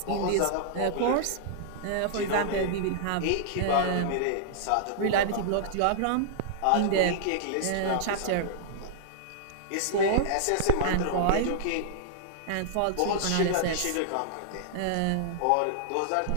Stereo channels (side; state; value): both; different; correlation -0.02